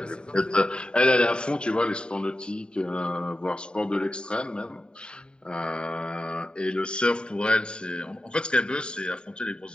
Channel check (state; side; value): late; right; 0.049 ms